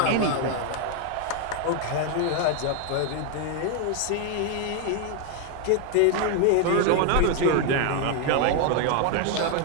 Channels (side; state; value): both; different; correlation 0.01